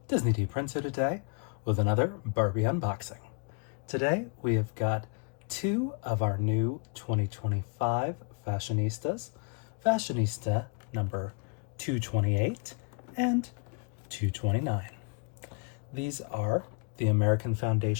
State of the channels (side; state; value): right; quieter; 35.5 dB